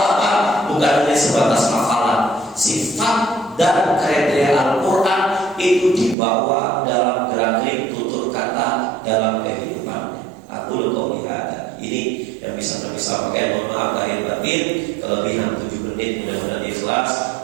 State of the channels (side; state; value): left; drops out; at 6.2 s